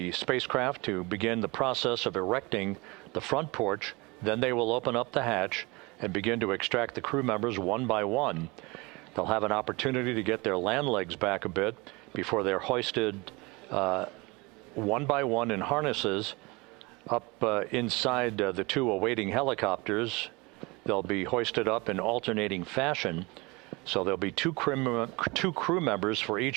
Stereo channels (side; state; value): left; quieter; 25.1 dB